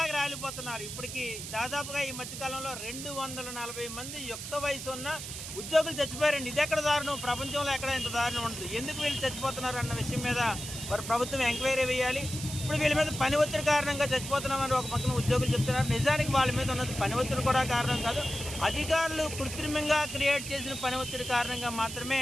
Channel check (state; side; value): noise; right; hiss, 8 dB below the sound